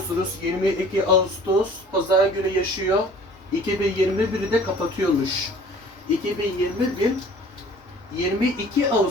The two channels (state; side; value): normal; both; correlation 0.49